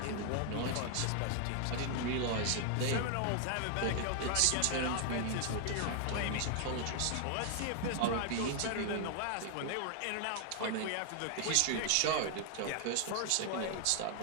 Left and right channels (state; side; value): different; both; correlation 0.00